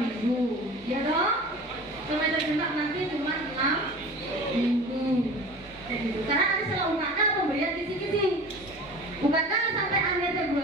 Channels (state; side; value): normal; both; correlation 0.38